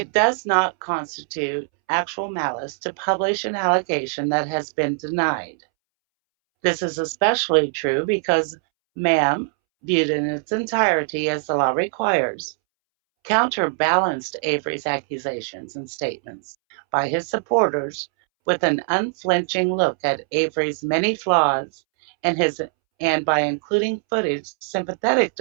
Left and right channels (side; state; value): left; silent; 64 dB below the other